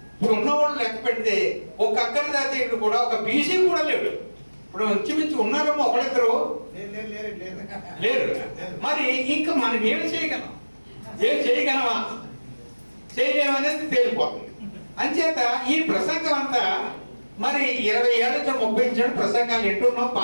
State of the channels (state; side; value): inverted; both; correlation -1.00